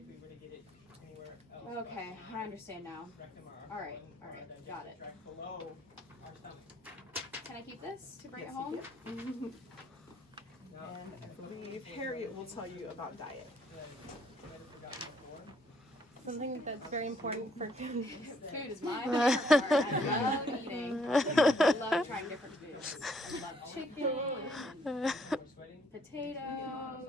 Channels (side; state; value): both; normal; correlation 0.66